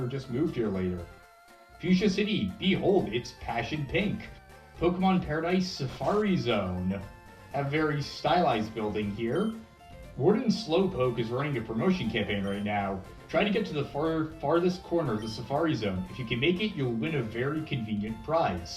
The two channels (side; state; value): both; identical; correlation 1.00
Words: just moved here later. Fuchsia City, behold, it's passion pink. Pokemon Paradise Safari Zone. A very stylized building here. Warden Slowpoke is running a promotion campaign right now. Try to get to the farthest corner of the Safari Zone. If you can make it, you'll win a very convenient